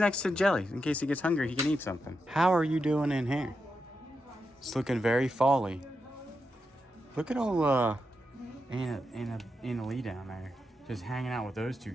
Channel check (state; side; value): normal; both; correlation 0.86